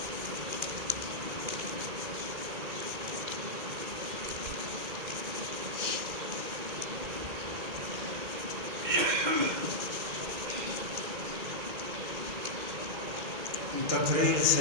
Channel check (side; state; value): left; late; 2.2 ms